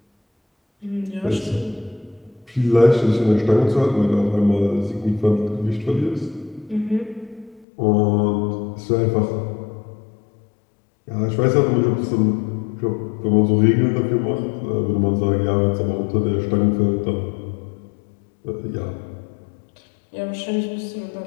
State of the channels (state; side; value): drops out; right; at 7.7 s